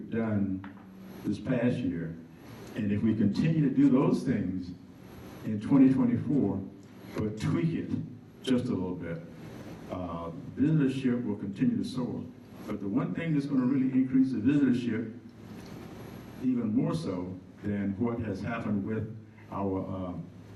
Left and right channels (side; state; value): both; identical; correlation 1.00